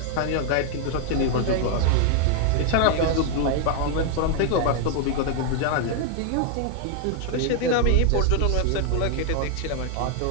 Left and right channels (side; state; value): both; different; correlation 0.00